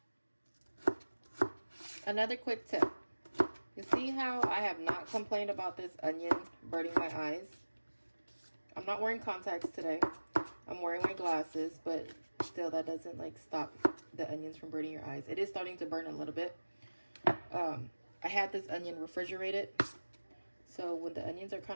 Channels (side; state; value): both; inverted; correlation -1.00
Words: Another quick tip. You see how I have not complained about this onion burning my eyes? I'm not wearing contacts today. I'm wearing my glasses, but still that doesn't like stop the onions from burning your eyes. It is starting to burn a little bit. I had this onion refrigerated, so when the onions are